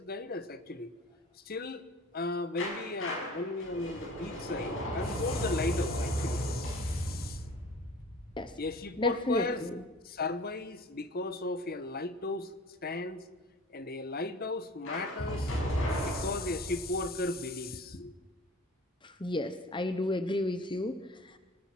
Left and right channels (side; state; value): both; normal; correlation 0.43